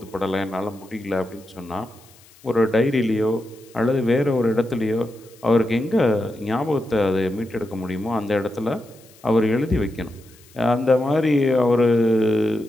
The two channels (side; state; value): left; noise; hiss, 26 dB below the sound